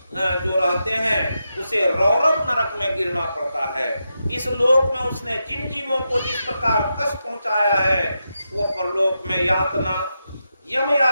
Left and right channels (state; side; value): inverted; both; correlation -0.87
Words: जो रहते हैं उसे रौरव नरक में गिरना पड़ता है। इस लोक में उसने जिन जीवों को जिस प्रकार कष्ट पहुंचाया है वो परलोक में यातना यम